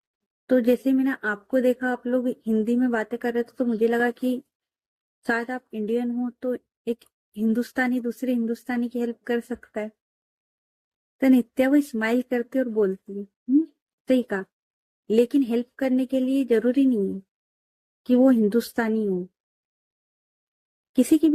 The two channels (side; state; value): both; identical; correlation 1.00